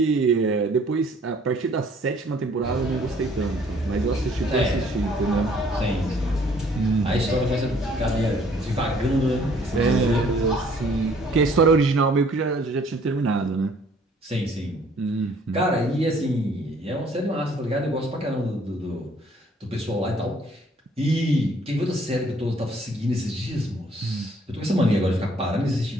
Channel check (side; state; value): both; normal; correlation 0.59